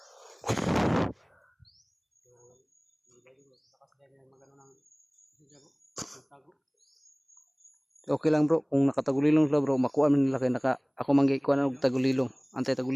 Takas din yung magano ng siya bro. Pantagog. Okay lang bro, kung nakatagulilong sila bro, makuha man nila kay ako manggay kuha og tagulilong. Antay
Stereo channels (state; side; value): identical; both; correlation 1.00